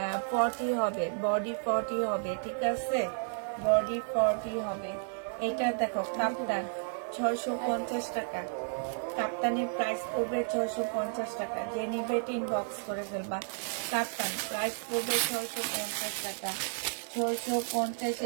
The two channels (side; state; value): left; silent; digital silence